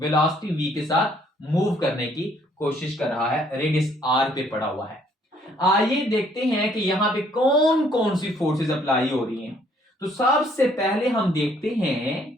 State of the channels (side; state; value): both; normal; correlation 0.64